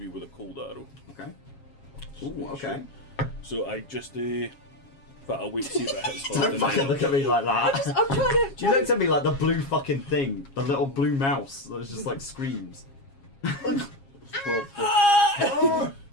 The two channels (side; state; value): right; late; 7.3 ms